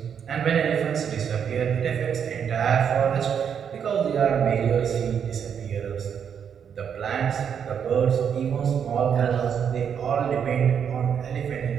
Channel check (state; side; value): quieter; left; 7.8 dB